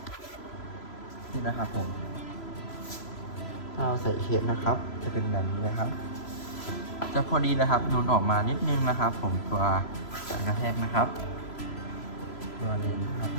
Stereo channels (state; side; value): late; right; 3.0 ms